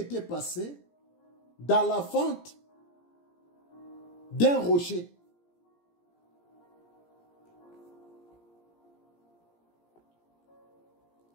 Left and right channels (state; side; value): late; right; 17 ms